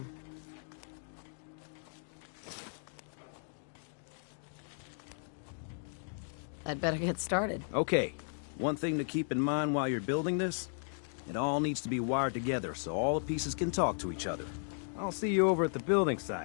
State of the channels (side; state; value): right; silent; digital silence